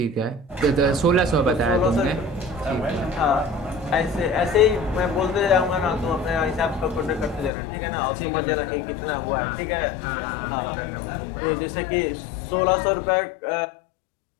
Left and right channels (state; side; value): drops out; right; at 7.5 s